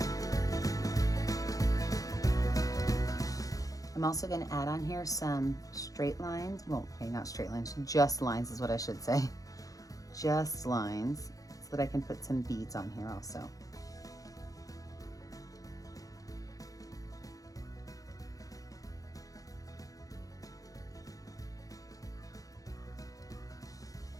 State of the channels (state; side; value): late; right; 0.17 ms